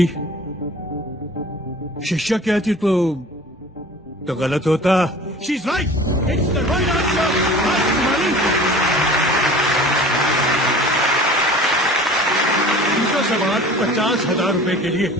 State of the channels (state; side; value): normal; both; correlation 0.43